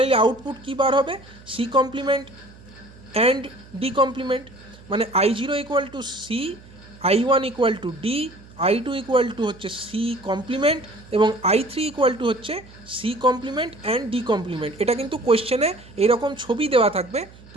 আউটপুট কী বার হবে? C complement and D complement. মানে I0 equal to C, I1 equal to D, I2 equal to হচ্ছে সি কমপ্লিমেন্ট, এবং I3 ইকুয়াল টু হচ্ছে C complement and D complement. এটা কিন্তু কোয়েশ্চেনে এইরকম ছবি দেওয়া থাকবে,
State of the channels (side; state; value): right; noise; hum, 22 dB below the sound